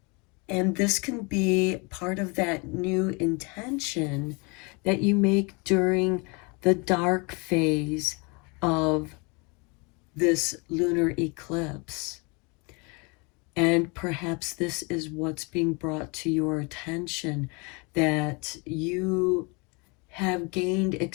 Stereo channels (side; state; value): right; quieter; 30.2 dB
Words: And this can be part of that new intention that you make during the dark phase of this lunar eclipse. And perhaps this is what's being brought to your attention, that you have gained